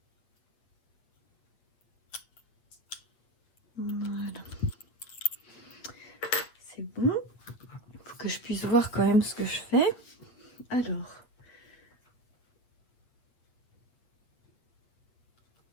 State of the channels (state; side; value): late; right; 8.5 ms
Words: Voilà. C'est bon. Il faut que je puisse voir quand même ce que je fais. Alors.